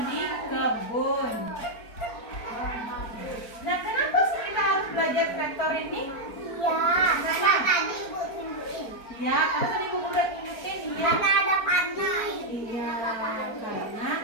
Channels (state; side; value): late; right; 4.4 ms